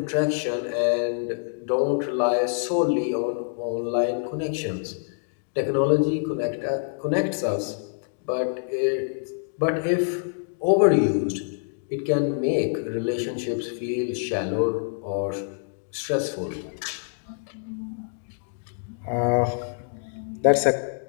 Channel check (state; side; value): silent; right; digital silence